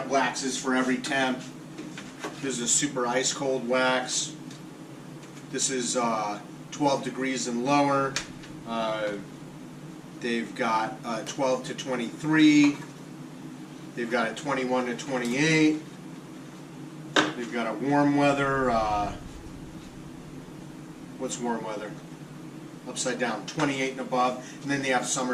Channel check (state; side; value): identical; both; correlation 1.00